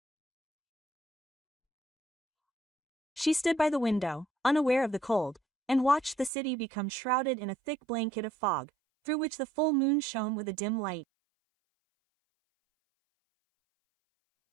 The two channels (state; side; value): drops out; left; at 6.3 s